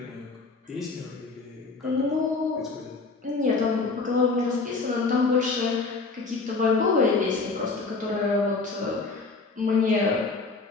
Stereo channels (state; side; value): quieter; right; 4.0 dB